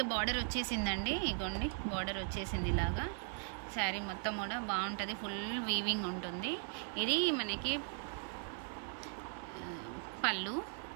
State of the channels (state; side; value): silent; left; 52 dB below the other